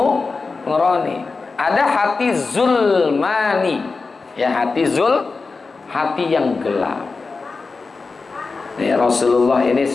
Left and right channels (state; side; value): quieter; right; 4.2 dB